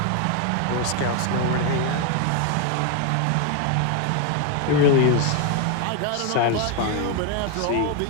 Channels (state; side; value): different; both; correlation 0.01